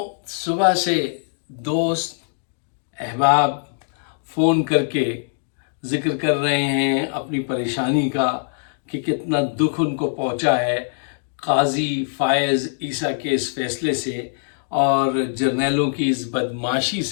صبح سے دوست احباب فون کر کے ذکر کر رہے ہیں اپنی پریشانی کا کہ کتنا دکھ ان کو پہنچا ہے قاضی فائز عیسیٰ کے اس فیصلے سے اور جرنیلوں کی اس بدمعاشی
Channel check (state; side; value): silent; right; digital silence